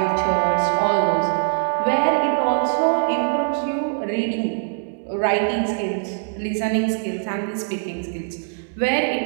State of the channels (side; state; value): left; silent; 64 dB below the other